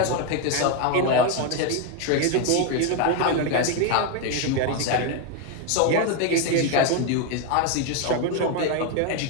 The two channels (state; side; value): different; both; correlation 0.02